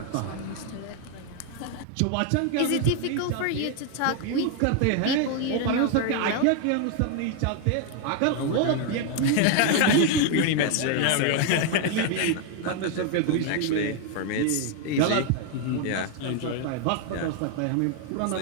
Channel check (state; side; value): different; both; correlation 0.00